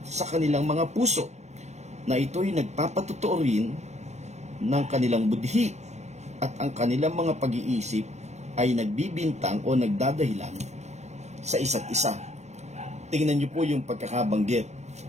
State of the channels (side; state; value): left; late; 0.33 ms